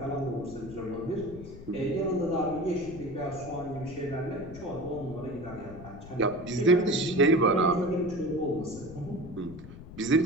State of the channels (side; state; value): left; noise; rumble, 15 dB below the sound